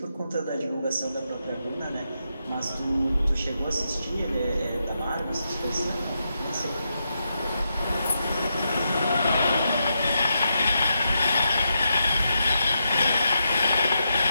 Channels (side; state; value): both; inverted; correlation -0.84